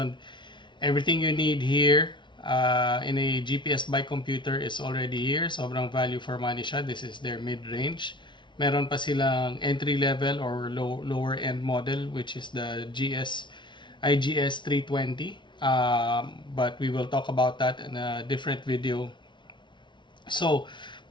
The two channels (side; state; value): right; late; 0.23 ms